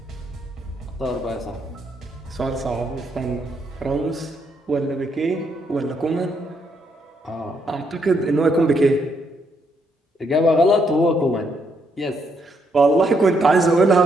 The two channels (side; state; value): both; normal; correlation 0.75